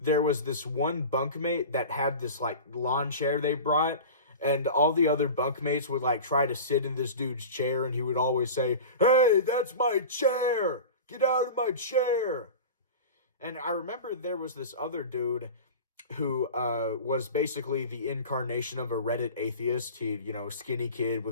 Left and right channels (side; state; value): both; inverted; correlation -0.33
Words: was this one bunkmate that had this like lawn chair they brought, and all the other bunkmates would like try to sit in this dude's chair, and he would always say, "Hey, that's my chair! Get out of my chair!" And I remember there was this other dude who was basically the incarnation of a Reddit atheist. He, skinny kid